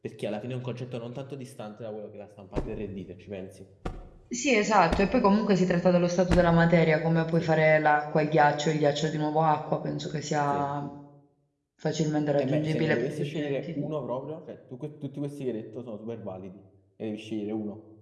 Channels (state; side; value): identical; both; correlation 1.00